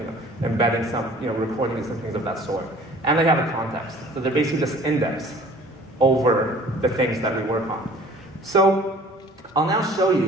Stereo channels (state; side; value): normal; both; correlation 0.50